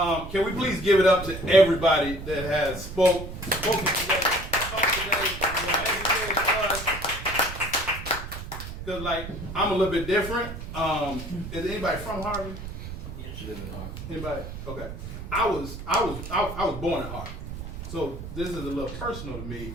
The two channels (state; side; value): noise; right; rumble, 9 dB below the sound